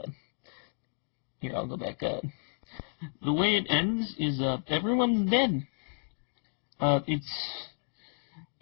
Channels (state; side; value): silent; right; digital silence